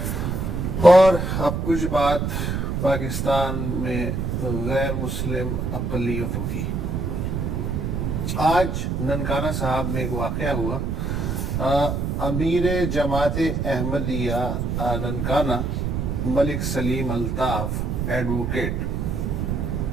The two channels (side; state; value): right; noise; rumble, 1 dB below the sound